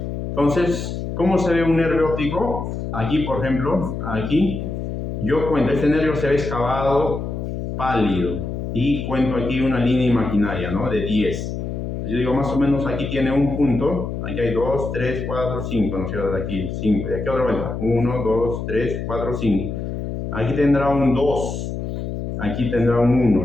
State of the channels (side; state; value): left; noise; hum, 5 dB below the sound